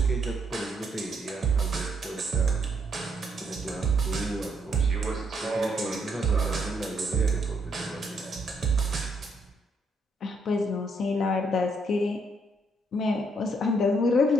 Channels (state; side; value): normal; both; correlation 0.73